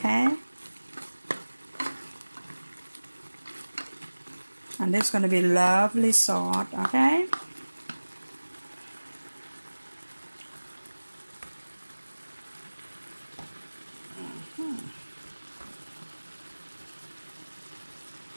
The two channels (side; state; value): both; inverted; correlation -1.00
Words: and this is gonna be lovely soft. Okay.